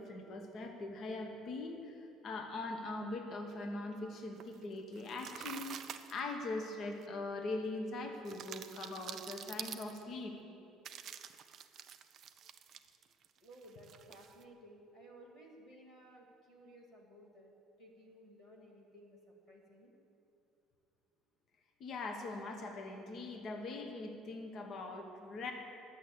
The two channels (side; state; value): both; normal; correlation 0.66